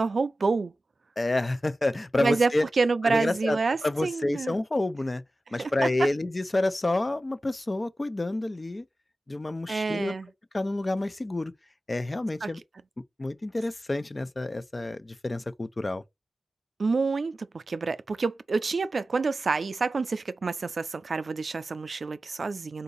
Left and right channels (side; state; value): both; normal; correlation 0.94